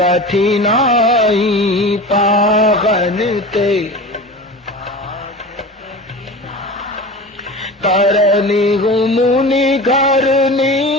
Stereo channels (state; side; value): normal; both; correlation 0.32